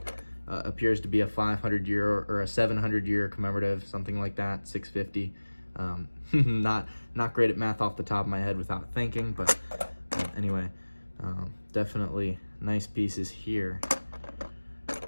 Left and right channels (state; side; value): inverted; both; correlation -1.00